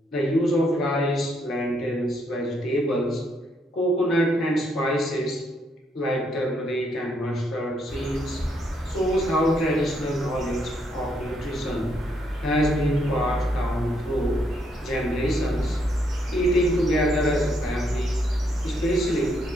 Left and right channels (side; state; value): both; normal; correlation 0.74